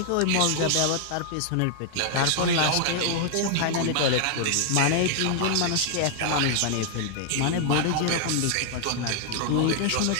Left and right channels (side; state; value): both; different; correlation 0.00